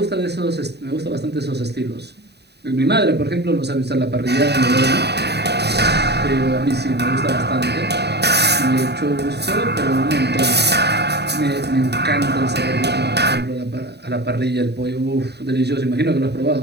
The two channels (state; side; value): late; left; 0.48 ms